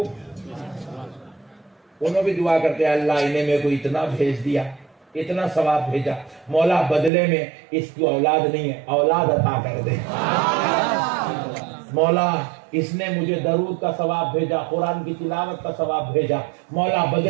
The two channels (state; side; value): drops out; left; at 7.1 s